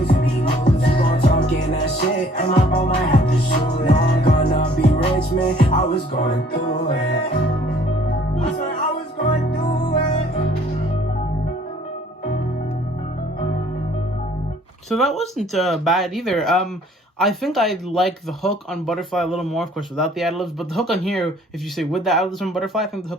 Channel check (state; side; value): normal; both; correlation 0.57